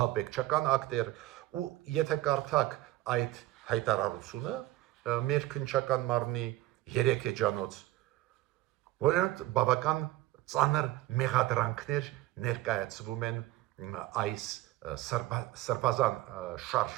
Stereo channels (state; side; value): quieter; left; 16.4 dB